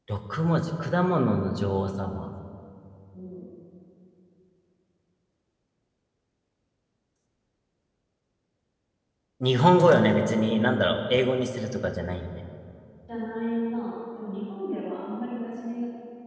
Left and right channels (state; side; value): identical; both; correlation 1.00